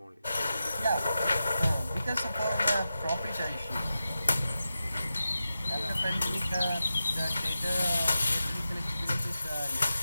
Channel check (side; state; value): both; inverted; correlation -0.91